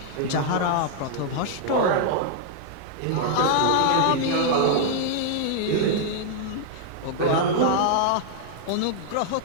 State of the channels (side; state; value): both; different; correlation 0.00